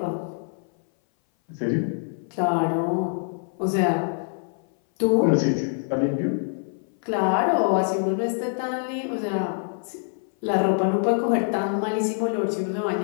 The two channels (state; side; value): silent; right; 58 dB below the other